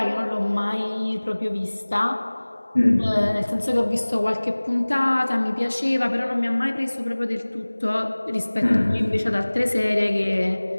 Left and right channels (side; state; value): both; inverted; correlation -1.00